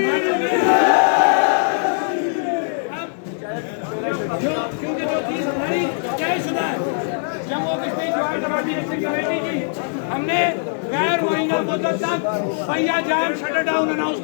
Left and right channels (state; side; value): silent; right; 65 dB below the other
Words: क्योंकि जो चीज हमारी तयशुदा है जम्मू कश्मीर ज्वाइंट अवामी एक्शन कमेटी की, हमने गैर मुहैया मुद्दत तक पहिया जाम शटर डाउन अनाउंस